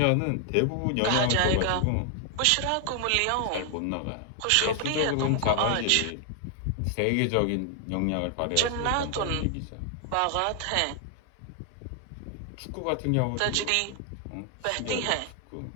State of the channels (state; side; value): different; both; correlation 0.00